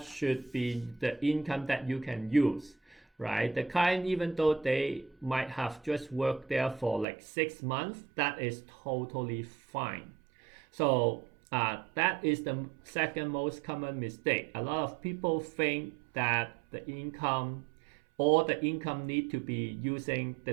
should be the income that you can use, right? The client, even though they might have just worked there for like 6 months, that is totally fine. So that is the second most common mistake. A lot of people think that the income need to be using the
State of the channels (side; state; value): left; drops out; at 7.1 s